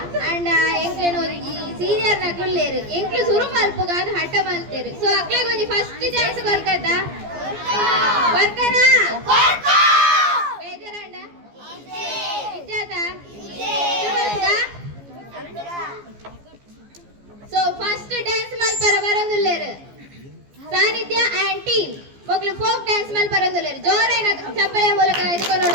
ಅಂಡ ಎಂಕ್ಲೆನ ಒಂಜಿ ಸೀನಿಯರ್ ನ ಕುಳ್ಳೇರು ಎಂಕ್ಲು ಸುರು ಮಲ್ಪುಗಾನ್ ಹಠ ಮಲ್ತೇರು. ಸೊ ಅಕ್ಲೆಗ್ ಒಂಜಿ ಫಸ್ಟ್ ಚಾನ್ಸ್ ಕೊರ್ಕದ ಕೊರ್ಕನ ಬೇಜಾರಂಡ ಇಜ್ಜಾತ ಸೊ ಫಸ್ಟ್ ಡ್ಯಾನ್ಸ್ ಮಲ್ಪರ ಬರಂದುಲ್ಲೇರು ಸಾನಿಧ್ಯ ಅಂಡ್ ಟೀಮ್ ಮಕ್ಕಳು ಫೋಕ್ ಡ್ಯಾನ್ಸ್ ಮೇಲೆ ಬರೋದಿಲ್ಲ. ಜೋರೇನ ಚಪ್ಪಲಿಯ ಮೂಲಕ ಇದ್ಕೊಂಡು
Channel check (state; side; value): late; left; 14 ms